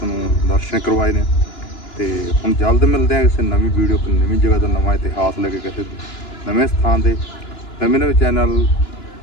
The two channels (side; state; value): right; late; 2.9 ms